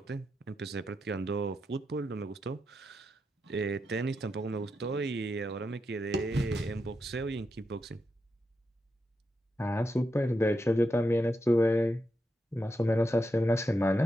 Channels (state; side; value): normal; both; correlation 0.86